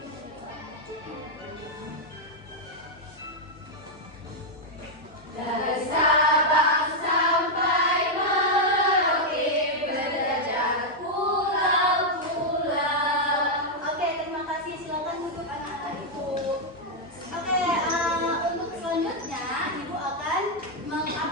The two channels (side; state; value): both; normal; correlation -0.02